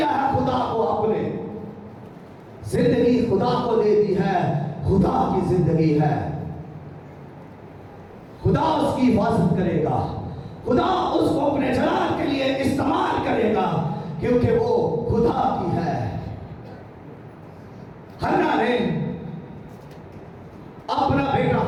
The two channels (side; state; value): both; identical; correlation 1.00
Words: है खुदा को? आपने जिंदगी खुदा को दे दी है, खुदा की जिंदगी है। खुदा उसकी हिफाजत करेगा, खुदा उसको अपने जलाल के लिए इस्तेमाल करेगा, क्योंकि वो खुदा की है। हन्ना ने अपना बेटा